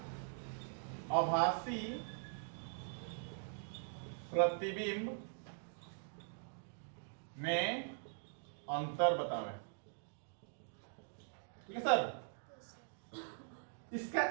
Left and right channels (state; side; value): silent; left; digital silence